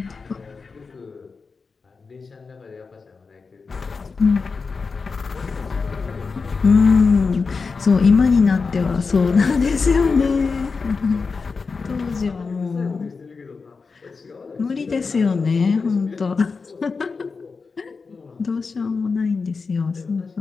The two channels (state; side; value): quieter; right; 4.7 dB